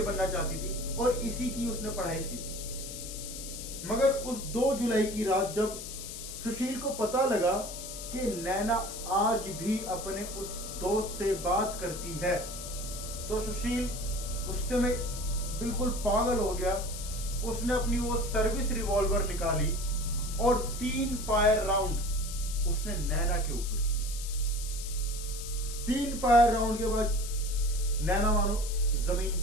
बनना चाहती थी और इसी की उसने पढ़ाई की थी। मगर उस 2 जुलाई की रात जब सुशील को पता लगा कि नैना आज भी अपने उस दोस्त से बात करती है, तो सुशील गुस्से में बिल्कुल पागल हो गया। उसने अपनी वो सर्विस रिवॉल्वर निकाली और 3 फायर राउंड उसने नैना के ऊपर किए। 3 फायर राउंड के बाद नैना मानो जमीन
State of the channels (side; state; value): left; noise; hiss, 9 dB below the sound